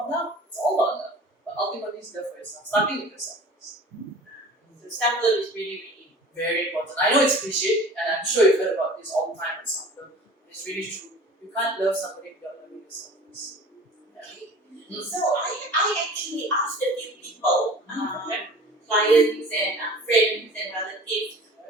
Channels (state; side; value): normal; both; correlation 0.42